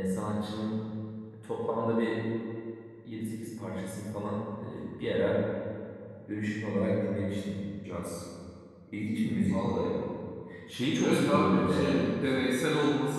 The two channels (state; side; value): identical; both; correlation 1.00